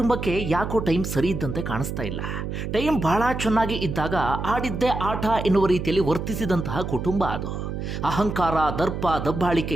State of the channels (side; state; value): right; noise; hum, 5 dB below the sound